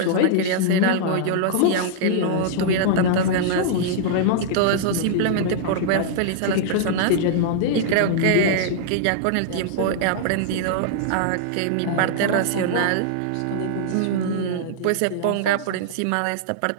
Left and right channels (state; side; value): different; both; correlation -0.01